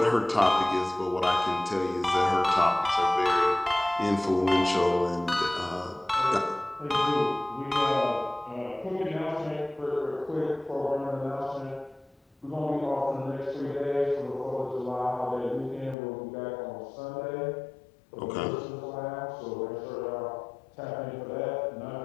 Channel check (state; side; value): drops out; right; at 16.0 s